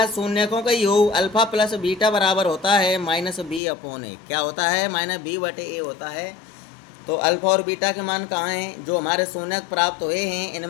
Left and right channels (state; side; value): drops out; right; at 3.6 s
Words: शून्यकों का योग अल्फा प्लस बीटा बराबर होता है -b/a। क्या होता है, -b/a होता है। तो अल्फा और बीटा के मान कहाँ हैं, जो हमारे शून्यक प्राप्त हुए हैं